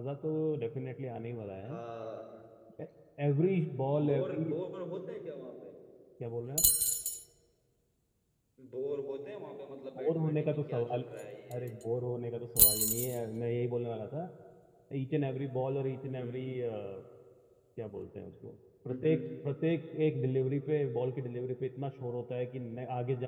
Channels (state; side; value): identical; both; correlation 1.00